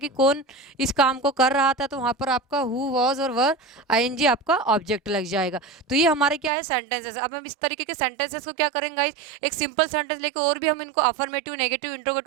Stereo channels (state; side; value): drops out; left; at 6.5 s